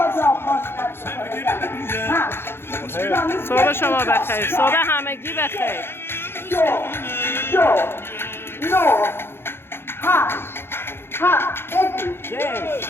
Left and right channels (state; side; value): late; right; 0.11 ms